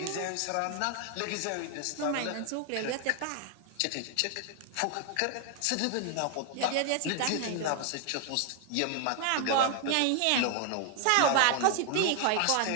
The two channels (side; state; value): both; different; correlation 0.00